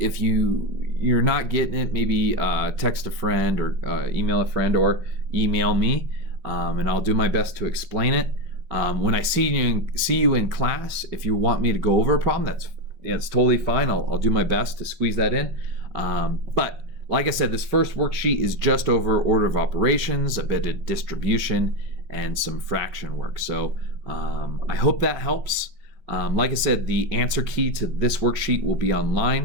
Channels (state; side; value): late; left; 5.4 ms